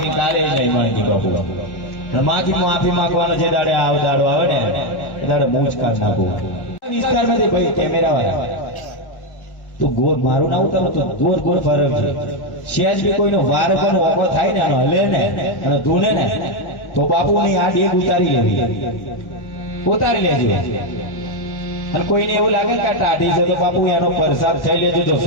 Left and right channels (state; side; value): late; right; 1.1 ms